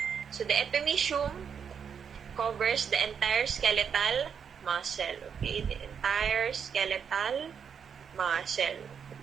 So, the epimysium covers the entire skeletal muscle. Okay? The entire skeletal muscle.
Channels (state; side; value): quieter; left; 7.1 dB